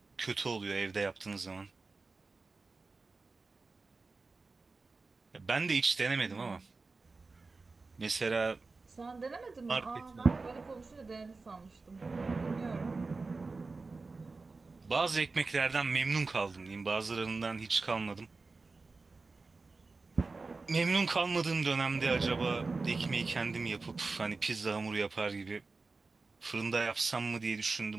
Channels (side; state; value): left; quieter; 3.9 dB